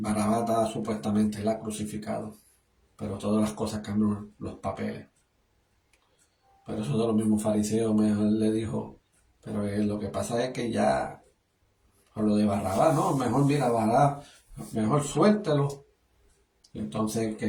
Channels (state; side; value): identical; both; correlation 1.00